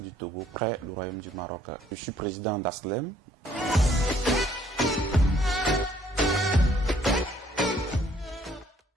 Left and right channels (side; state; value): both; normal; correlation 0.63